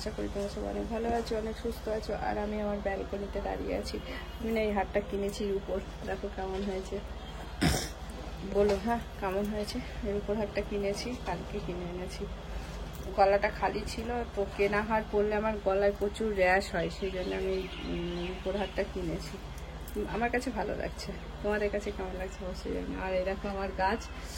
করি তোমরা সবাই অনেক ভালো আছো, অনেক সুস্থ আছো। আর আমি আমার ব্যালকনিতে দাঁড়িয়ে আছি। আমি না এই হারটা কিনেছি উপর, দেখো কেমন হয়েছে, বলো হ্যাঁ কেমন হয়েছে। এর উপর হারটা কিনেছি, কালকে কিনে এনেছি। গলাটা খালি ছিল, তো কেনা হার পরলে আমার গলায় প্রচুর র্যাশ হয়, সেই জন্য আমি উপর হারটা কিনেছি। আমার কাছে ভালো লাগছে, তোমাদের কাছে কেমন লাগছে অবশ্যই জানি। আর এই দেখো আমার গাছ,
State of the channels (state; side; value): identical; both; correlation 1.00